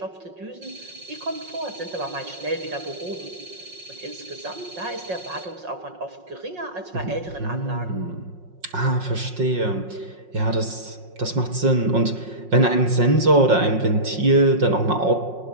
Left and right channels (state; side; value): late; left; 5.5 ms